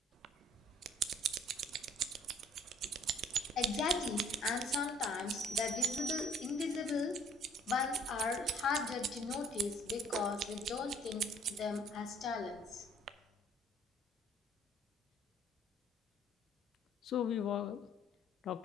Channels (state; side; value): normal; both; correlation 0.58